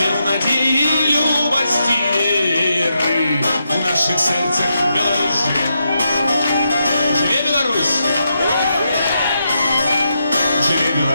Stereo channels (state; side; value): inverted; both; correlation -0.83